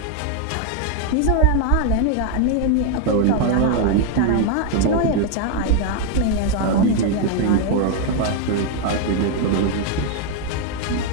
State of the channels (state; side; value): different; both; correlation 0.01